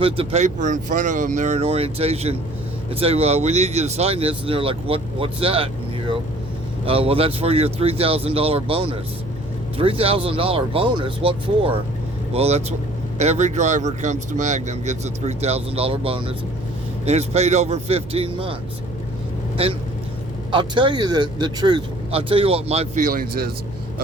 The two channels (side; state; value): right; noise; hum, 15 dB below the sound